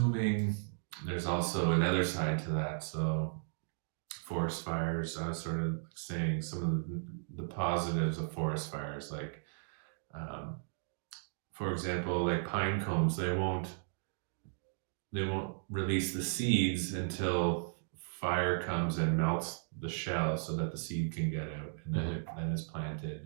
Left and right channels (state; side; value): silent; left; digital silence